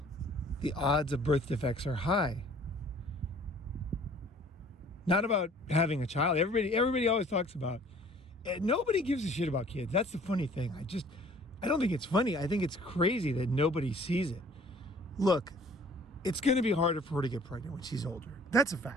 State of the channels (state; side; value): normal; both; correlation 0.53